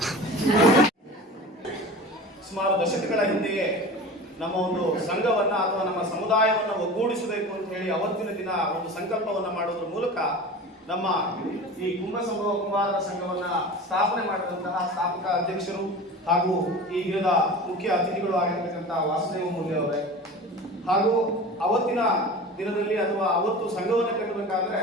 ಸುಮಾರು ದಶಕಗಳ ಹಿಂದೆಯೇ ನಮ್ಮ ಒಂದು ಸಂಘವನ್ನ ಅಥವಾ ನಮ್ಮ ಸಮುದಾಯವನ್ನ ಒಗ್ಗೂಡಿಸಬೇಕು ಅಂತ ಹೇಳಿ ಅವತ್ತಿನ ದಿನ ಒಂದು ಸಂಕಲ್ಪವನ್ನ ಮಾಡೋದ್ರ ಮೂಲಕ ನಮ್ಮ ಈ ಕುಂಬಾರರ ಸಂಘವನ್ನ ಸ್ಥಾಪನೆ ಮಾಡಿದಂತಹ ಸ್ಥಾಪಕ ಅಧ್ಯಕ್ಷರು ಹಾಗೂ ಈ ದಿನದ ಮುಖ್ಯ ಅತಿಥಿಗಳು ಆಗಿರ್ತಕ್ಕಂಥ ವಾಸುದೇವ ಮೂಲ್ಯ ಅವರೇ, ಹಾಗೂ ಅವತ್ತಿನ ದಿನದಲ್ಲಿ ಅಥವಾ ಅವತ್ತು ಸಂಘವನ್ನು ಕಟ್ಟಬೇಕಾದ್ರೆ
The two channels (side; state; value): both; normal; correlation 0.35